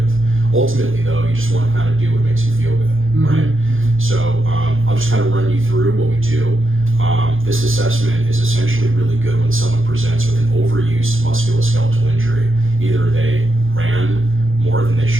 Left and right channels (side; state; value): left; late; 0.59 ms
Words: Ultimately though, you just want to kind of do what makes you feel good, right? So I'll just kind of run you through what we do. This assessment is essentially really good when someone presents with an overused musculoskeletal injury. Either they ran more than they